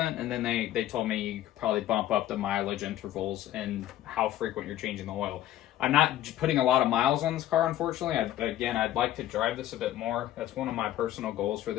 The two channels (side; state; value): right; quieter; 13.2 dB